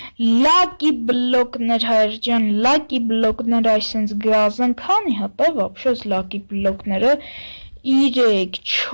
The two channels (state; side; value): inverted; both; correlation -1.00